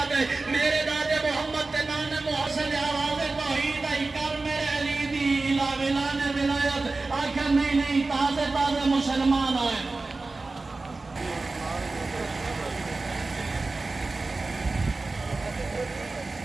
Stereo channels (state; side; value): quieter; left; 3.5 dB